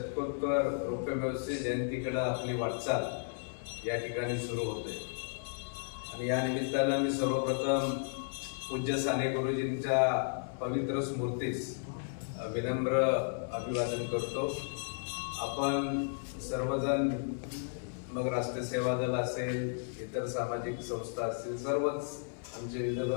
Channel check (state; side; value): silent; right; 55 dB below the other